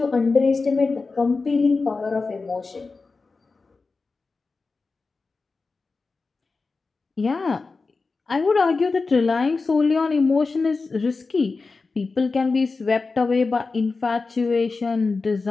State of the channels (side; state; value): right; quieter; 4.1 dB